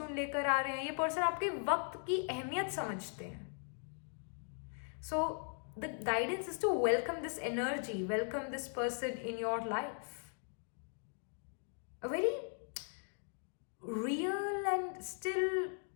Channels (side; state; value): right; silent; 52 dB below the other